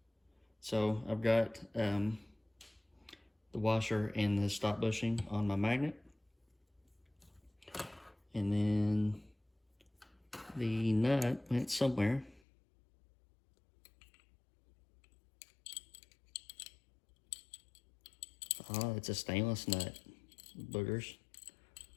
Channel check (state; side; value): drops out; right; at 12.4 s